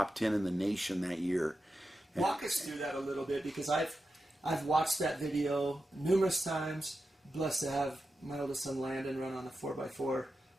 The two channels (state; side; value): normal; both; correlation 0.90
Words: 10 in the nation that year. Walk us through that a little bit, because I've watched that video numerous times. Blessed to have my oldest son Landon run on a 4x4